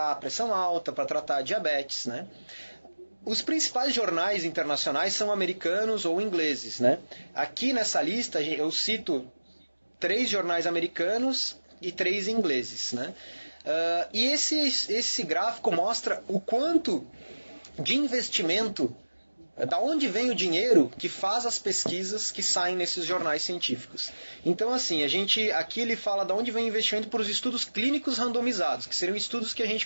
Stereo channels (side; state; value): both; inverted; correlation -1.00